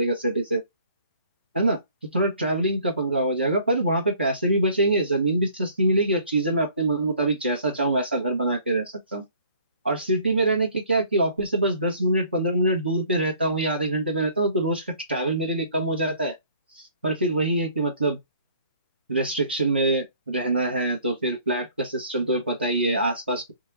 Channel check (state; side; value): inverted; both; correlation -0.56